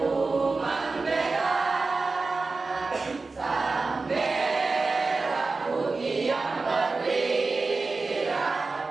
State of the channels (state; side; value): quieter; left; 3.9 dB